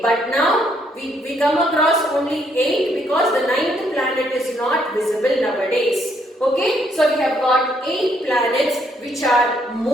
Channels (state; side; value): normal; both; correlation 0.71